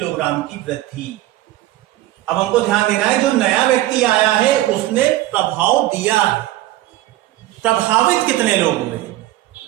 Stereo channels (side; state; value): left; quieter; 15.6 dB